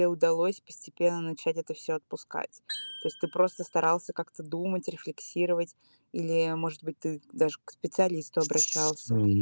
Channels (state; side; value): inverted; both; correlation -1.00